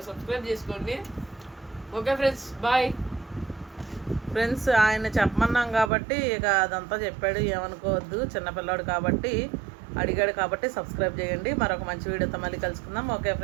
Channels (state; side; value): drops out; left; at 5.9 s